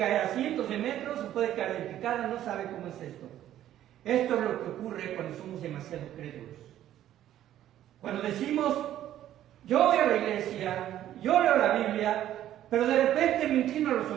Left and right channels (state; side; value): quieter; left; 12.2 dB